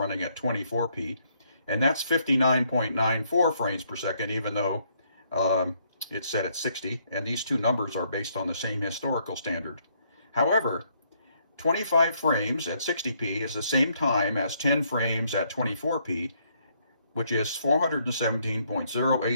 at 24p, and that's 59.94 frames per second, even though it's set at 60, and these two numbers are based on the same historical standard. However, 25 frames at 60p is the same time as 10 frames at 24p, which is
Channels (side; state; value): both; inverted; correlation -0.70